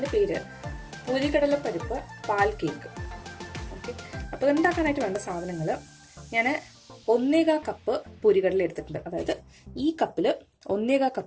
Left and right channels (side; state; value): both; identical; correlation 1.00